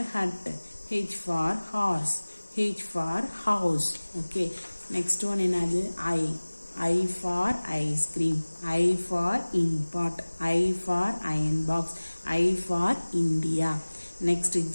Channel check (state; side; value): inverted; both; correlation -1.00